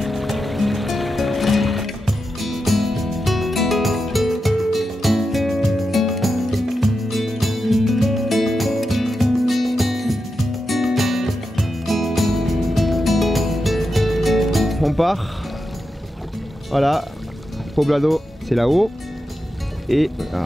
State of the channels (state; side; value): normal; both; correlation 0.88